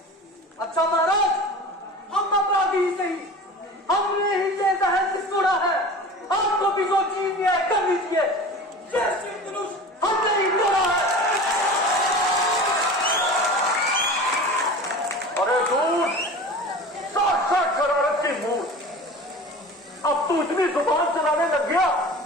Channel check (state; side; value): normal; both; correlation 0.36